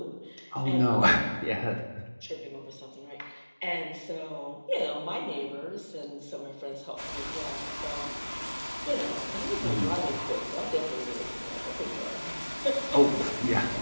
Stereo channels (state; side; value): inverted; both; correlation -1.00